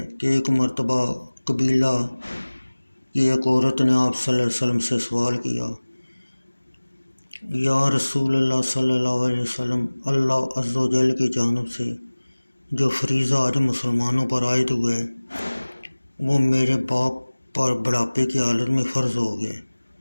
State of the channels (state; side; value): inverted; both; correlation -1.00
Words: کہ ایک مرتبہ قبیلہ کی ایک عورت نے آپ صلی اللہ علیہ وسلم سے سوال کیا، یا رسول اللہ صلی اللہ علیہ وسلم، اللہ عز و جل کی جانب سے جو فریضہ حج مسلمانوں پر عائد ہوا ہے وہ میرے باپ پر بڑھاپے کی حالت میں فرض ہو گیا،